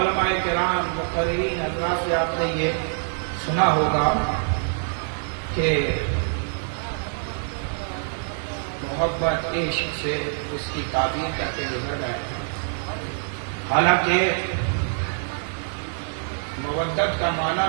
کرام مقررین حضرات سے آپ نے یہ سنا ہوگا کہ محبت عشق سے اس کی تعبیر کر کے گزر گئے، حالانکہ مودت کا معنی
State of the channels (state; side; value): silent; left; 62 dB below the other